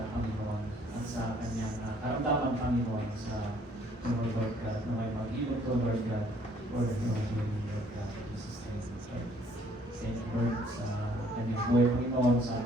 Panginoon at sa kanyang karamdaman Panginoon sa Lord God naway mag-ilog to Lord God for the healing Lord God in Jesus name. Thank you Lord sa kanyang buhay Panginoon sa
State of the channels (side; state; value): both; normal; correlation 0.62